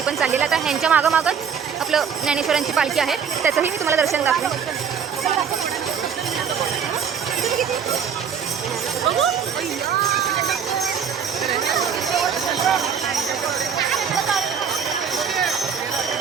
पण चाललेली आहे. आता ह्यांच्या मागंच आपलं ज्ञानेश्वरांची पालखी आहे, त्याचंही मी तुम्हाला दर्शन दाखवेन.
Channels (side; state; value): left; quieter; 7.2 dB